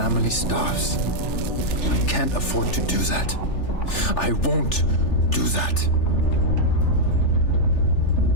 starves. I can't afford to do that. I won't do that.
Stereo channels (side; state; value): right; late; 3.4 ms